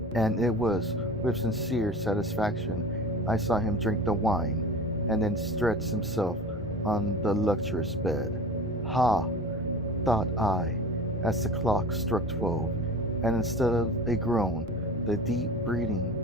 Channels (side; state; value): both; normal; correlation 0.36